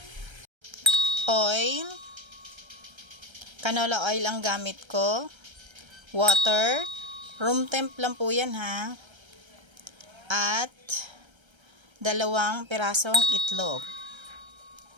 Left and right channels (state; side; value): late; left; 1.3 ms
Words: oil, canola oil ang gamit ko, water, room temp lang po yan ha, at 2 pirasong itlog.